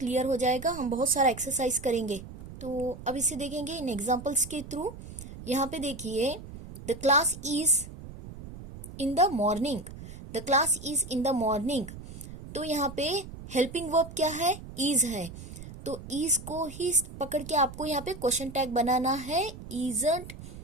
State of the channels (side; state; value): right; noise; rumble, 13 dB below the sound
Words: हो जाएगा। हम बहुत सारा एक्सरसाइज करेंगे, तो अब इसे देखेंगे इन एग्जाम्पल्स के थ्रू। यहाँ पे देखिए, the class is in the morning. The class is in the morning. तो यहाँ पे हेल्पिंग वर्ब क्या है? इज है। तो इज को ही पकड़ के आपको यहाँ पे क्वेश्चन टैग बनाना है। Isn't